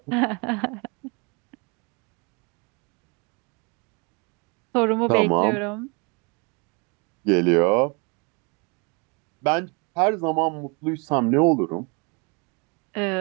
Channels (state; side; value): quieter; left; 31.0 dB